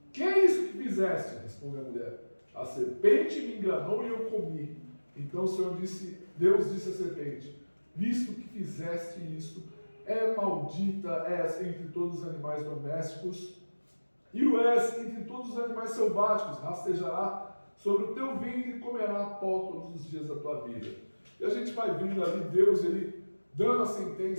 que é isso que fizeste? Respondeu a mulher. A serpente me enganou e eu comi. Então o Senhor Deus disse à serpente, visto que fizeste isso, é maldita és entre todos os animais domésticos, e o és entre todos os animais selváticos, rastejará sobre o teu ventre e comerá pó todos os dias da tua vida. E a gente vai vendo ali Deus, ele dando a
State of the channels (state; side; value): inverted; both; correlation -1.00